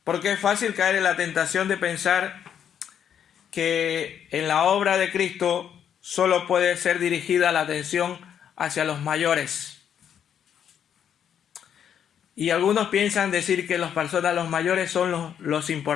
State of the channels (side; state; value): right; quieter; 8.8 dB